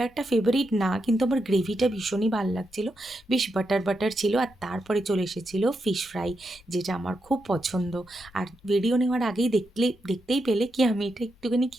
ফেভারিট না, কিন্তু আমার গ্রেভিটা ভীষণই ভাল লাগছিলো। বেশ বাটার, বাটার ছিল। আর তারপরে চলে এসেছিলো ফিশ ফ্রাই, যেটা আমার খুব পছন্দ। আর ভিডিও নেওয়ার আগেই দেখতেই পেলে কি আমি এটা একটুখানি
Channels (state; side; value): normal; both; correlation 0.85